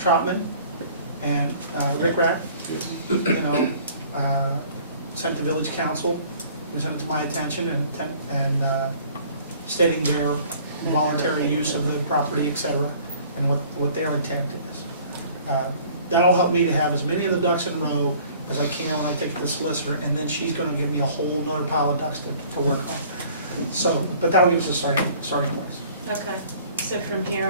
and Rick Rapp, sent to village council, you send it to my attention and stating their voluntary use of the property, et cetera, and what their intent is. That'll help me to have as many of the ducks in a row as I can when I take it to the solicitor, and then she's gonna give me a whole nother pile of ducks to work on. So, but that'll give us a starting place. Okay. So from here,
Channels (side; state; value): both; inverted; correlation -0.52